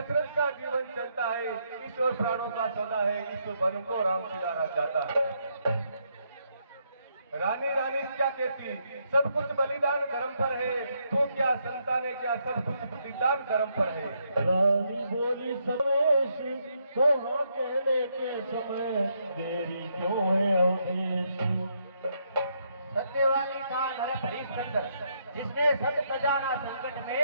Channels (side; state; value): both; inverted; correlation -0.76